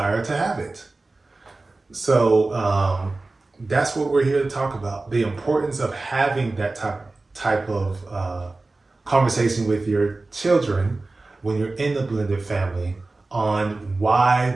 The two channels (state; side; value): quieter; left; 3.3 dB